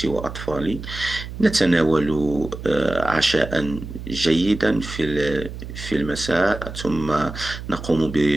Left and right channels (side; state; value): right; noise; hum, 10 dB below the sound